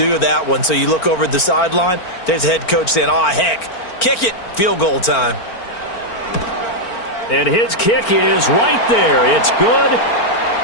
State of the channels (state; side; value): late; right; 4.4 ms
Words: that one. So you look over at the sideline. There's the head coach saying, oh, heck, kick it. Field goal time. And his kick is right there. It's good.